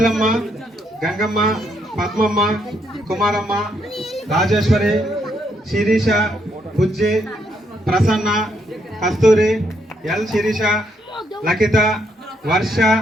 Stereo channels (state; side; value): normal; both; correlation 0.75